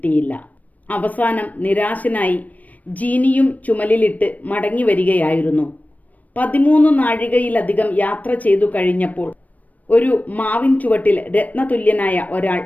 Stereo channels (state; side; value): late; right; 0.074 ms